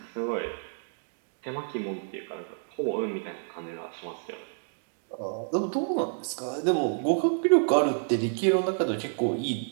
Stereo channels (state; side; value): silent; left; digital silence